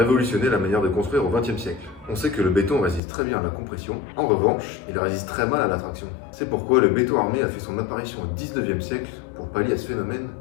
la manière de construire au XXe siècle. On sait que le béton résiste très bien à la compression, en revanche, il résiste très mal à la traction. C'est pourquoi le béton armé a fait son apparition au XIXe siècle pour pallier à ce phénomène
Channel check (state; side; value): drops out; right; at 3.0 s